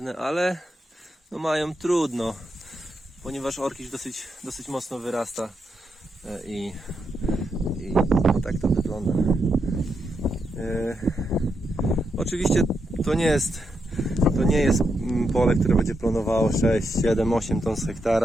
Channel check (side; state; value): both; normal; correlation 0.83